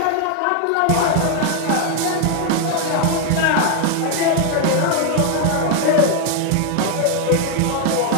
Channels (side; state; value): both; different; correlation 0.01